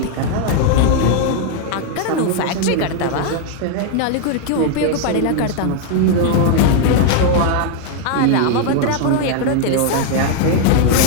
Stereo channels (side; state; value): both; different; correlation 0.00